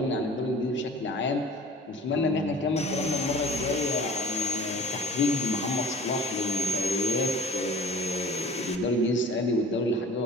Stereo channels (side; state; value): both; normal; correlation 0.45